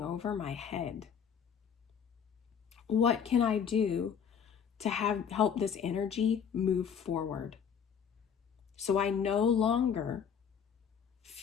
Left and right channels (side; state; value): right; quieter; 7.4 dB